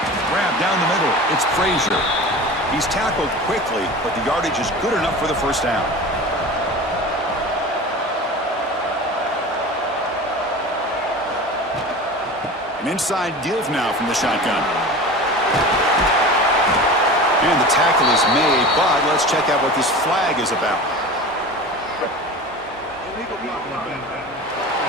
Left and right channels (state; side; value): normal; both; correlation 0.34